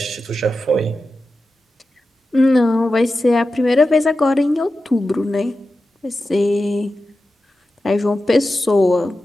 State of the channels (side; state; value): both; normal; correlation 0.92